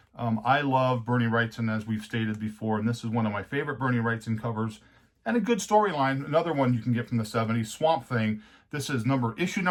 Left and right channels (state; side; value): identical; both; correlation 1.00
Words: I love Bernie Wrightson, as we've stated before, and this is one of my favorite Bernie Wrightson covers, and a good storyline. Another one you can get from the 70s, Swamp Thing. This is issue